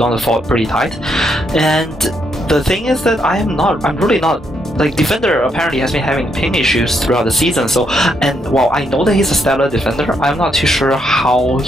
on the fort pretty tight. And the thing is that I'm really not, like, defender apparently has been having ping issues throughout the season, so, and while I know that he's a stellar defender, I'm not too sure how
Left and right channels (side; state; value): both; normal; correlation 0.76